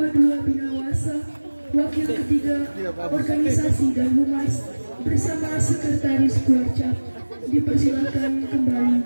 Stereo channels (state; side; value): inverted; both; correlation -1.00